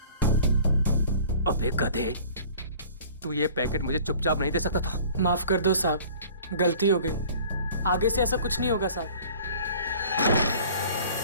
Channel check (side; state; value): both; inverted; correlation -0.48